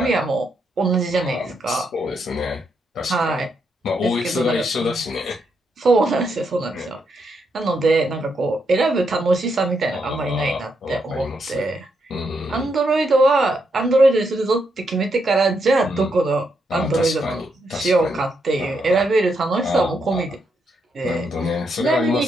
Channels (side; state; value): both; normal; correlation 0.80